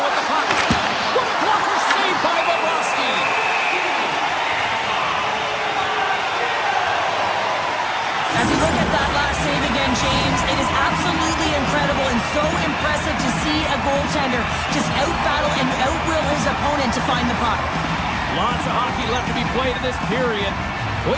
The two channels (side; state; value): both; identical; correlation 1.00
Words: with the puck. What a blocker save by Bobrovsky. As we look at that last save again, James, it is absolutely incredible and so impressive to see a goaltender just out-battle and out-will his opponent to find the puck. Lots of hockey left to be played in this period. We